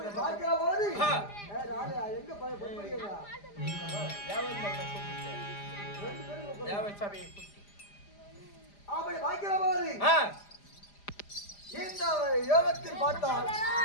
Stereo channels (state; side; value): late; right; 4.9 ms